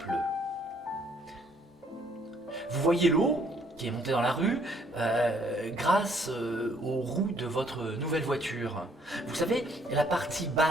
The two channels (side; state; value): both; normal; correlation 0.65